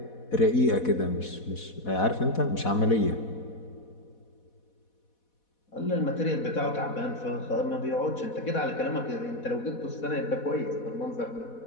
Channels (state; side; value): late; right; 4.1 ms